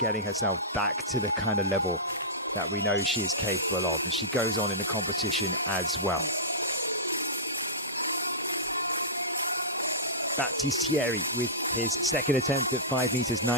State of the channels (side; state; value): both; normal; correlation -0.17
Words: herself back to the kind of level that we know she is capable of. And she goes on in the competition as well. Battistieri with his second attempt at 5 meters